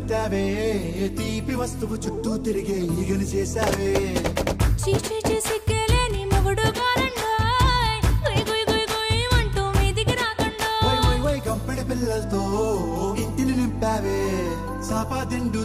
పెట్టావే తీపి వస్తువు చుట్టూ తిరిగే ఈగను చేసావే చీచి చేసి కేలేని మొగుడు గారండాయ్ గుయ్ గుయ్ గుయ్ గుయ్ అంటూ మీదికి రాకండా వై వై వై కంపెడి పిల్లలతో ఇంటిని నింపావే సాపా దిండు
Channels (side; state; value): both; identical; correlation 1.00